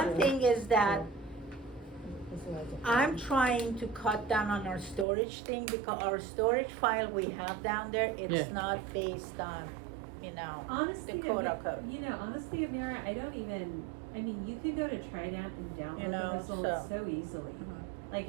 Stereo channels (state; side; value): drops out; left; at 5.1 s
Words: yeah. thing is that That's what I was- I'm trying to cut down on our storage thing, because our storage file we have down there, it's Yeah. not based on, you know, Honestly, the quote unquote. you know, honestly, Amira, I don't even, I mean, you could go to Trident and You download know, the results so easily. Mhm. Like,